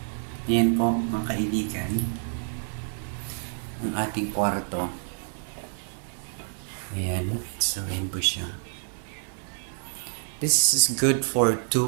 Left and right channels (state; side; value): silent; left; 60 dB below the other